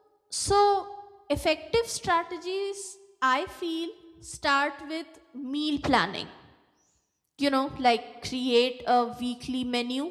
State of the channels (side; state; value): both; identical; correlation 1.00